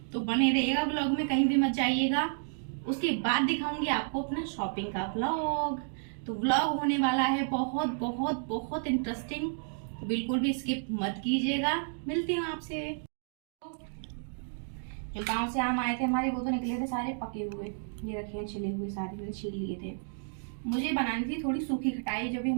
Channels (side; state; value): left; silent; digital silence